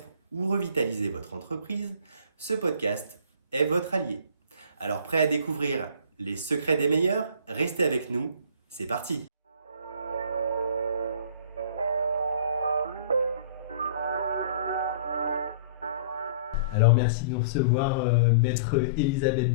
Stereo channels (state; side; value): inverted; both; correlation -0.45